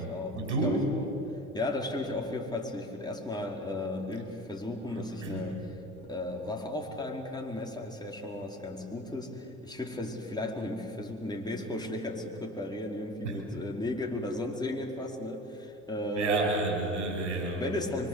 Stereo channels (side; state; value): both; normal; correlation 0.37